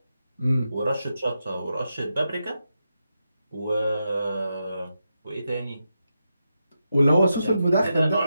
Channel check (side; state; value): both; inverted; correlation -0.87